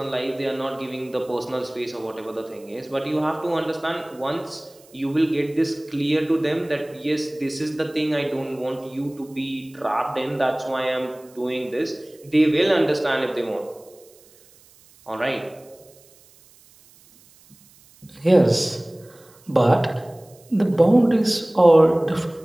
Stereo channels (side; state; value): right; noise; hiss, 27 dB below the sound